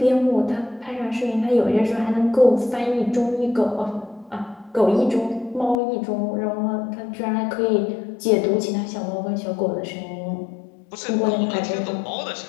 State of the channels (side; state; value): right; drops out; at 5.8 s